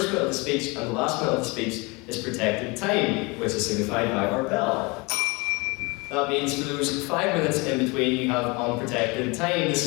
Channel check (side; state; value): right; quieter; 27.2 dB